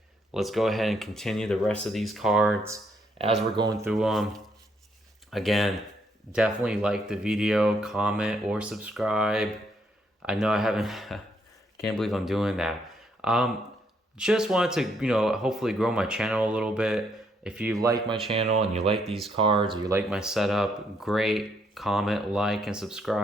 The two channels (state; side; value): normal; both; correlation 0.72